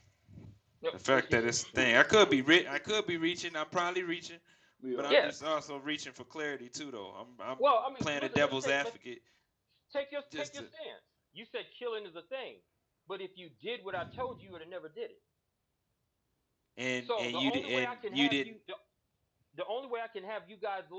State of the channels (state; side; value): identical; both; correlation 1.00